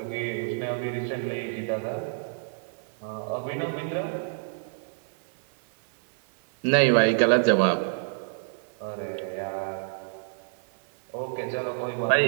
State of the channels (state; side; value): silent; left; 59 dB below the other